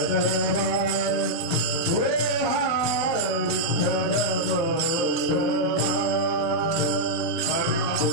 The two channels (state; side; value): late; right; 24 ms